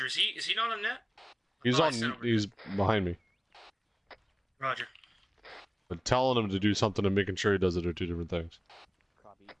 is he not on net? He's Oh, I on. sent over. He's behind me. Roger. But telling him to do something and making sure he does it are two different things. Copy.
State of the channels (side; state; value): both; identical; correlation 1.00